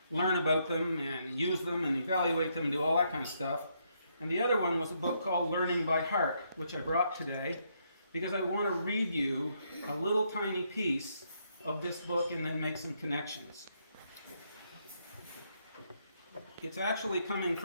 learn about them and use them and evaluate them and do all that kind of stuff. And the other one was a book called Learning by Heart, which I brought today because I want to read you a little tiny piece of this book and then make some connections. It's actually coming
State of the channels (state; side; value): inverted; both; correlation -0.75